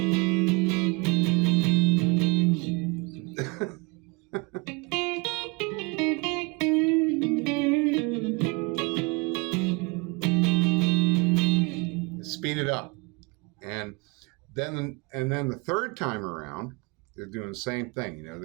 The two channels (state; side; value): quieter; left; 28.4 dB